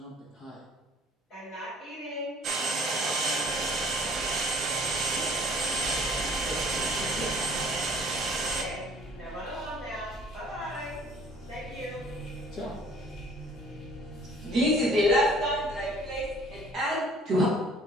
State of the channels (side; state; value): both; normal; correlation 0.54